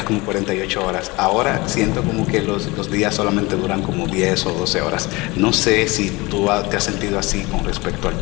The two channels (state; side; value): quieter; right; 23.5 dB